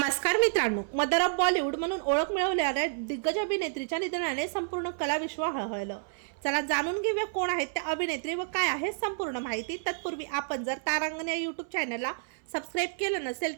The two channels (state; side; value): silent; left; 57 dB below the other